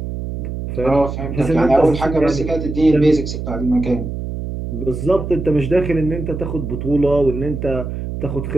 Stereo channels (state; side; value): noise; right; hum, 6 dB below the sound